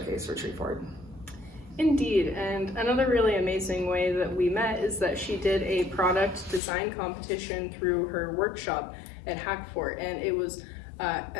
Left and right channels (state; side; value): drops out; right; at 6.6 s